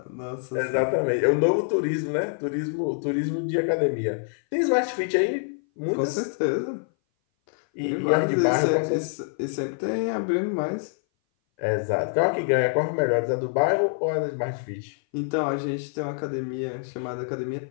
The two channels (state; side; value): silent; right; 58 dB below the other